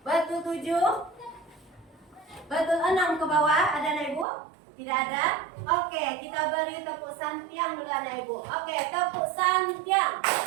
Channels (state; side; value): drops out; left; at 4.2 s